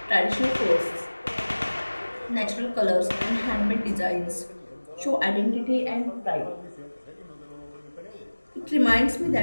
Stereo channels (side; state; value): both; inverted; correlation -1.00